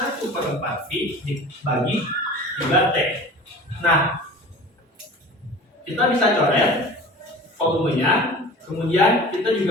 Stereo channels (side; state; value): both; normal; correlation 0.39